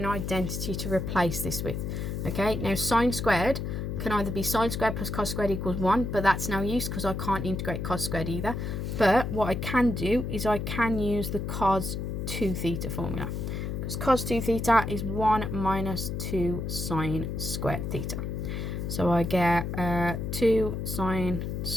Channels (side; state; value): left; noise; hum, 3 dB below the sound